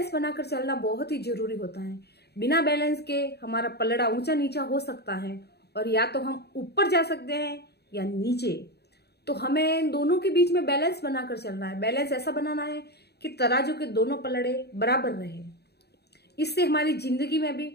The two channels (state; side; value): late; right; 0.48 ms